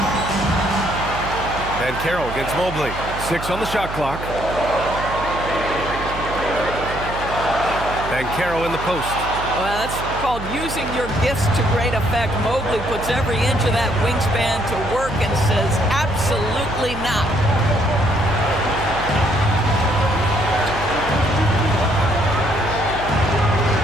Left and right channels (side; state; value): right; noise; hum, 9 dB below the sound